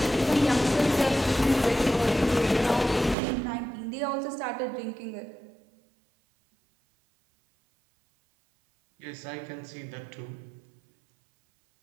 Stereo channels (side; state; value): left; drops out; at 3.2 s